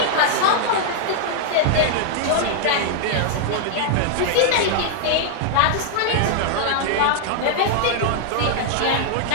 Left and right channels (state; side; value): different; both; correlation 0.00